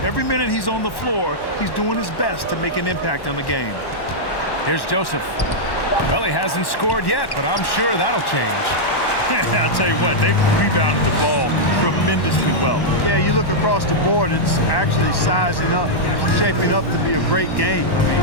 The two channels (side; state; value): right; late; 1.1 ms